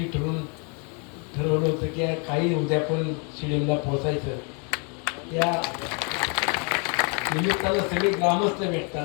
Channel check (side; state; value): right; quieter; 36.1 dB